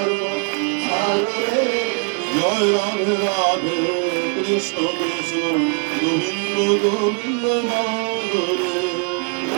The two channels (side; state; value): left; quieter; 36.8 dB